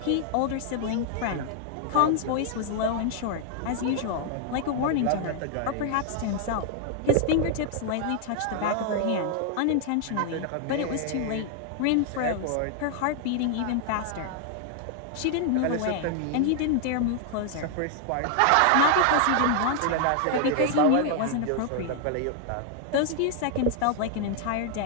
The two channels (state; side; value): different; both; correlation 0.00